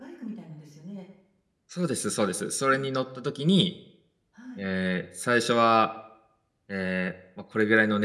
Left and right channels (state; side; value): identical; both; correlation 1.00